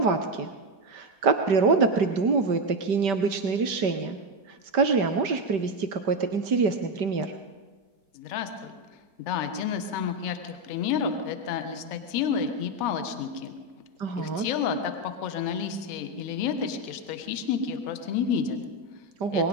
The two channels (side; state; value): left; late; 5.1 ms